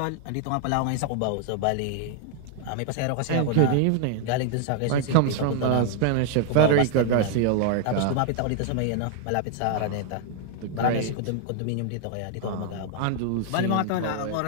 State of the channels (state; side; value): different; both; correlation 0.00